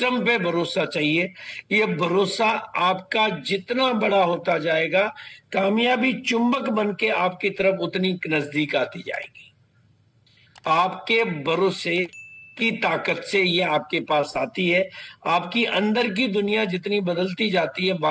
पे भरोसा चाहिए। ये भरोसा आपका जितना बड़ा होता जाएगा, कामयाबी चुंबक बन के आपकी तरफ उतनी नजदीक आती जाएगी। आपके भरोसे की ताकत से ये आपके पास आती है। आपकी अंदर की दुनिया जितनी बदलती जाती है,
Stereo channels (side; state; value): both; identical; correlation 1.00